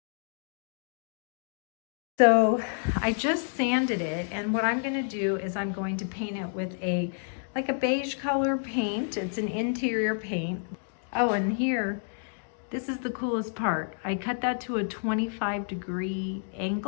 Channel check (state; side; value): silent; right; digital silence